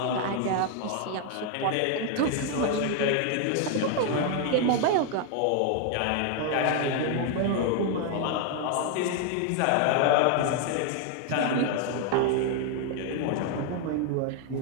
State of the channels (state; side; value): different; both; correlation 0.00